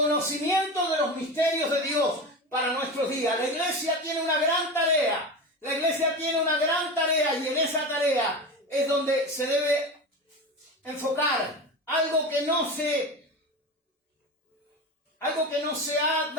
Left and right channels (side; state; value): both; normal; correlation 0.25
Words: de los misterios de Dios para nuestros días. La iglesia tiene una gran tarea. La iglesia tiene una gran tarea y en esa tarea es donde se debe enfocar. Algo que no se algo que no se ha